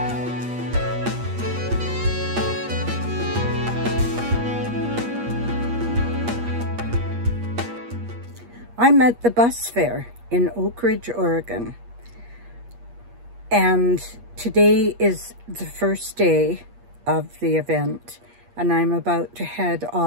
I'm at the bus fair in Oakridge, Oregon, and today is the first day of the event, and I'm about to head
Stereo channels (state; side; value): late; left; 8.4 ms